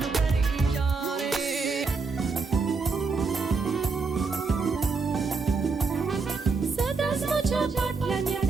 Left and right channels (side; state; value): left; quieter; 4.5 dB